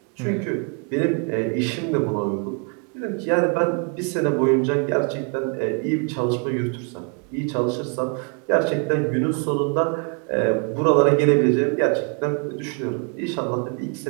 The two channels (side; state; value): left; quieter; 37.8 dB